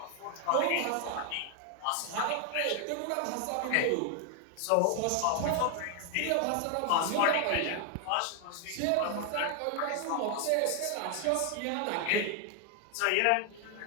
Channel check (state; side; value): different; both; correlation 0.00